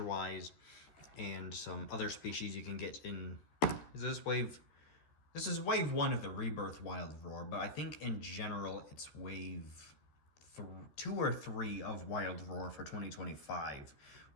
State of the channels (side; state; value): right; late; 14 ms